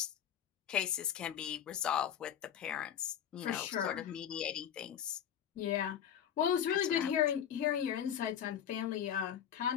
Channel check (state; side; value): quieter; right; 9.3 dB